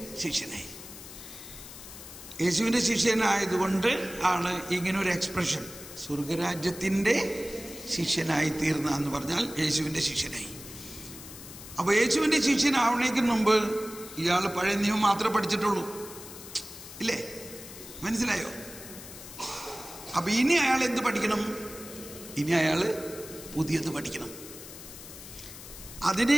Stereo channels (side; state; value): left; noise; hiss, 14 dB below the sound